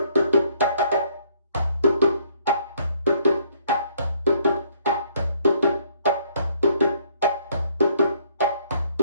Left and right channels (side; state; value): both; inverted; correlation -0.65